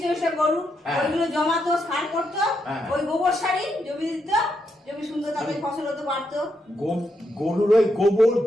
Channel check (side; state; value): both; normal; correlation 0.81